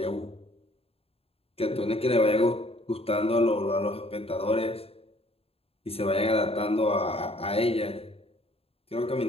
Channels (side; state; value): right; late; 0.28 ms